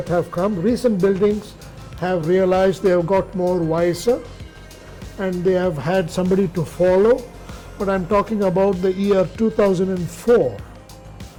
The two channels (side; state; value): both; identical; correlation 1.00